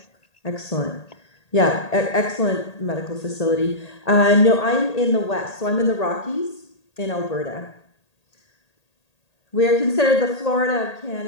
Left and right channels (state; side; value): late; right; 1.8 ms